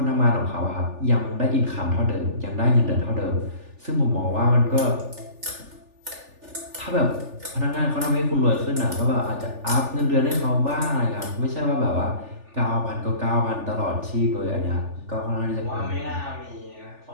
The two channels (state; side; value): late; left; 3.4 ms